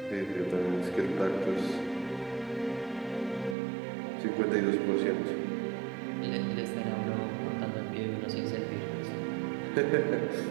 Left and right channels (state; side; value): drops out; left; at 3.6 s